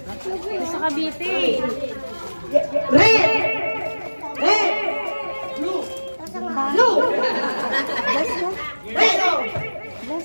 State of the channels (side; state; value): both; inverted; correlation -1.00